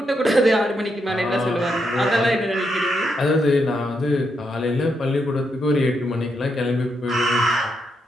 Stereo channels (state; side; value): normal; both; correlation 0.80